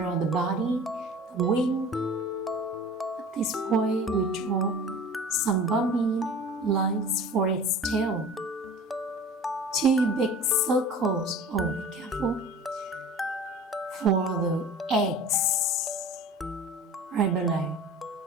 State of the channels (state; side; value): normal; both; correlation 0.41